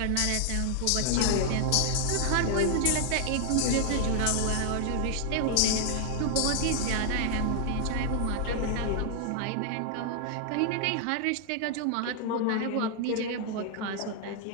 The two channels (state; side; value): different; both; correlation 0.00